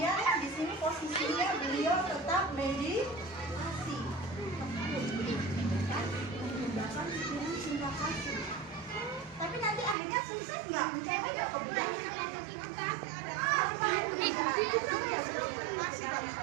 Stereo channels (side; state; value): left; drops out; at 10.0 s